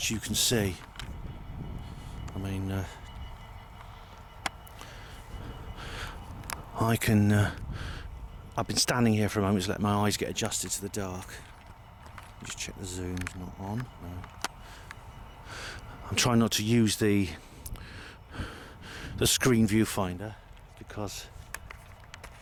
you can see. I mean, I've been standing here for a moment to let my eyes get adjusted to the dark. Just check the zoom's not on. No. I'm trying not to use the screen viewfinder because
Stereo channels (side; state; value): both; identical; correlation 1.00